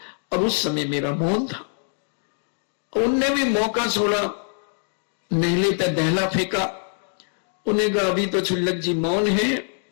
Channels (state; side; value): silent; right; digital silence